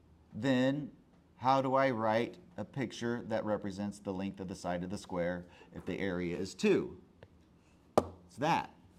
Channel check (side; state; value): both; identical; correlation 1.00